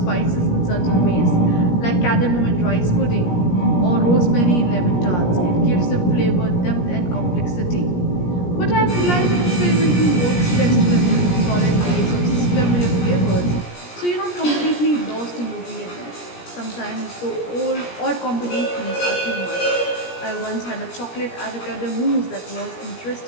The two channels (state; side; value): late; right; 17 ms